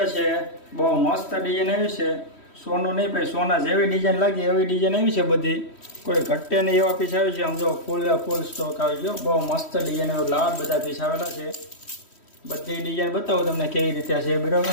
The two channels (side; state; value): right; late; 3.1 ms